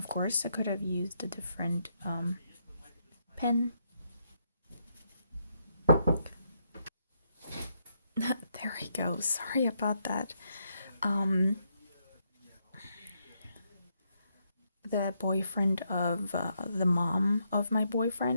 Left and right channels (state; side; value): inverted; both; correlation -0.77